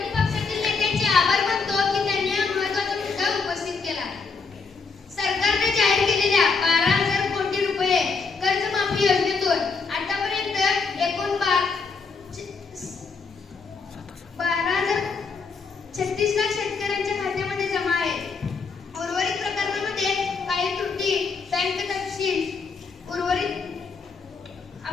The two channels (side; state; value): right; quieter; 4.8 dB